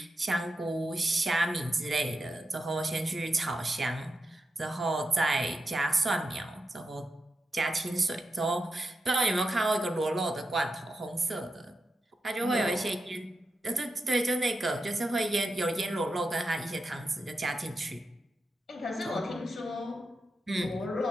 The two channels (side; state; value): both; normal; correlation 0.88